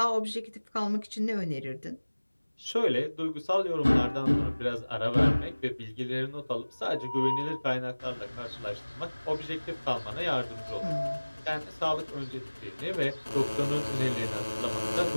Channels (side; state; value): both; inverted; correlation -1.00